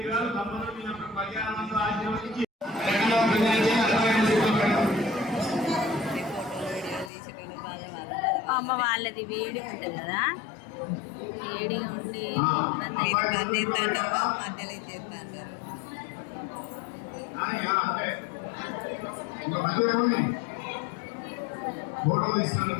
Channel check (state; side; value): drops out; right; at 7.1 s